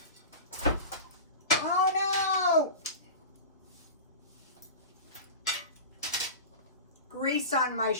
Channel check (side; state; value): both; inverted; correlation -0.31